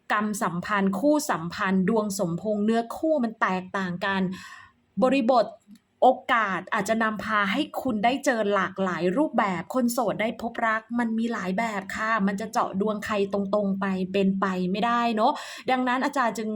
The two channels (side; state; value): both; identical; correlation 1.00